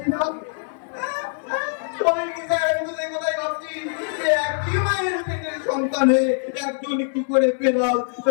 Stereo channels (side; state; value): right; silent; digital silence